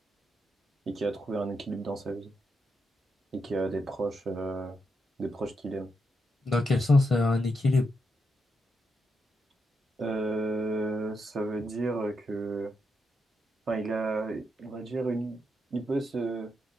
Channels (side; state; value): both; normal; correlation 0.83